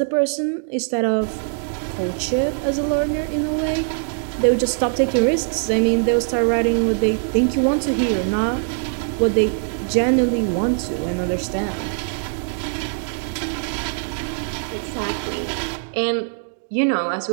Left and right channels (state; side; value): silent; left; 64 dB below the other